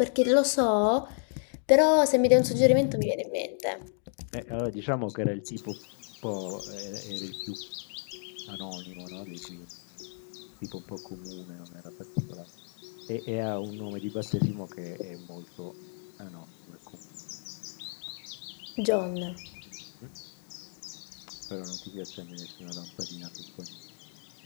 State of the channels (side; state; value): right; silent; digital silence